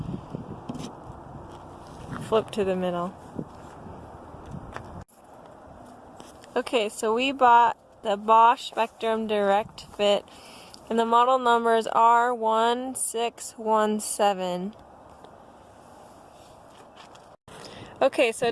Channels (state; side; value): identical; both; correlation 1.00